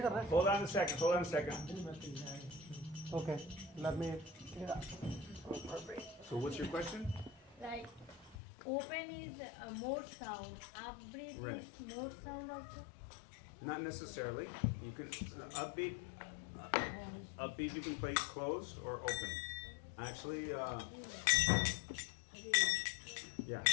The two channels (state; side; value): drops out; right; at 8.3 s